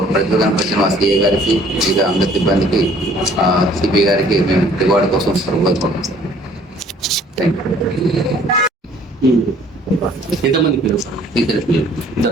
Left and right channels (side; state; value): both; normal; correlation 0.57